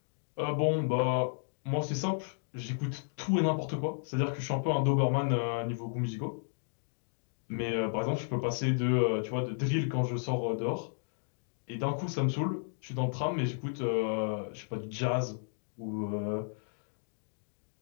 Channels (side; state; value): right; silent; digital silence